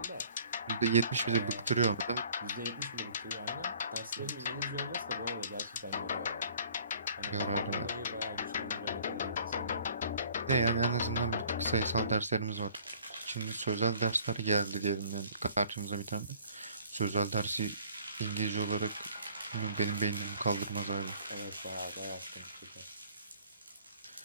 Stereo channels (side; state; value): both; inverted; correlation -0.55